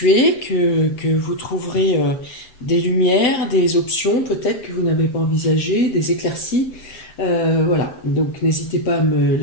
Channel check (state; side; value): late; right; 7.6 ms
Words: que vous trouverez des lumières, des options peut-être que vous n'avez pas envisagées, des éclaircies. Voilà, donc n'hésitez pas à me